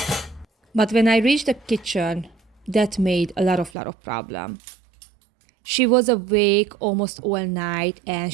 But when I reached the kitchen, that made a lot of problem. She was awake almost all night and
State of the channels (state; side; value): drops out; left; at 3.7 s